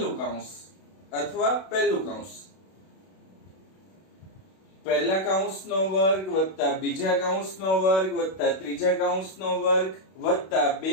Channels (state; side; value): late; right; 32 ms